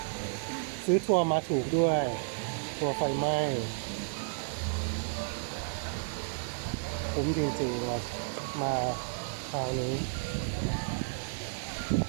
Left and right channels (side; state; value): left; silent; digital silence